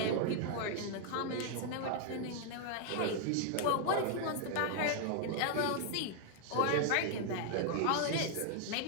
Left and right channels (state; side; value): different; both; correlation 0.00